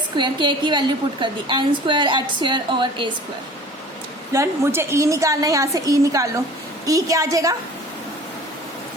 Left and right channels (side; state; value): both; normal; correlation 0.45